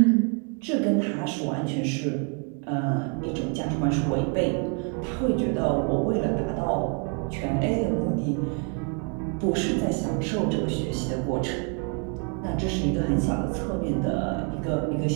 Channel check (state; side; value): quieter; left; 38.4 dB